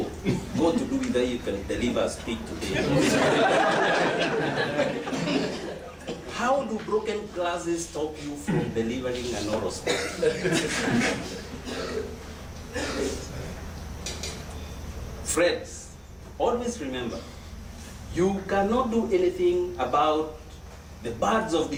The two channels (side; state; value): both; identical; correlation 1.00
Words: got to do with that you can deliver a speech today? How do broken glasses stop you from delivering an oral speech? Friends, always remember, you cannot do anything about the birds of